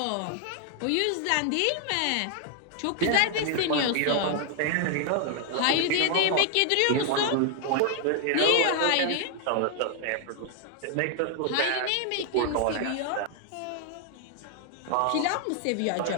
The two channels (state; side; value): different; both; correlation 0.00